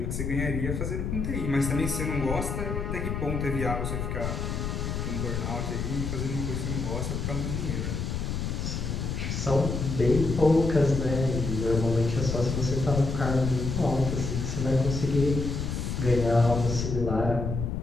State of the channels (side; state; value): left; noise; rumble, 2 dB below the sound